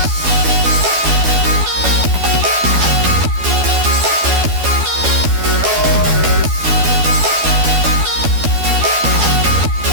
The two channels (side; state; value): left; late; 12 ms